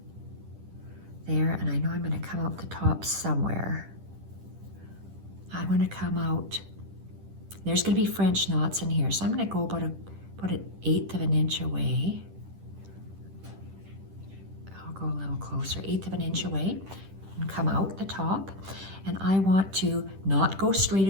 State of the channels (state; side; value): late; left; 10 ms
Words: there, and I know I'm gonna come out the top somewhere. I'm gonna come out, there's gonna be French knots in here, so I'm gonna go about an 1/8 of an inch away. I'll go a little closer, 1/8 of an inch away, and come out the top. And I want to not go straight